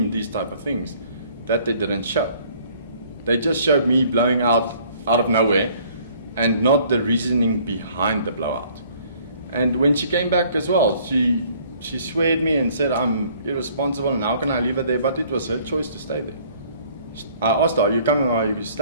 these type of things that they didn't show. They just showed me blowing out of nowhere and not the reasoning behind the blowout. And when she came back as well, she sweared me and said, I'm irresponsible and how can I leave her there? But it was her choice to stay there. I asked her, are you coming or are you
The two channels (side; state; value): both; inverted; correlation -0.58